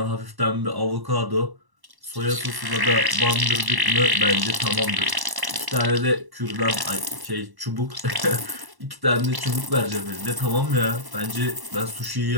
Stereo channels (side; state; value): left; late; 1.1 ms